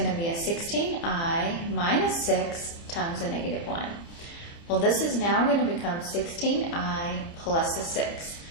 to be a 16i minus 6 times a negative 1. Well, this is now going to become 16i plus a 6.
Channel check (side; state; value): right; late; 29 ms